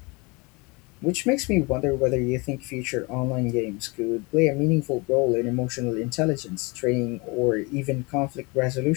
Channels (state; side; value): quieter; right; 27.5 dB